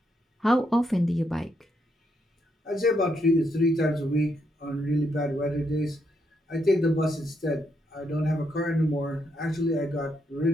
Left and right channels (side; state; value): both; normal; correlation 0.78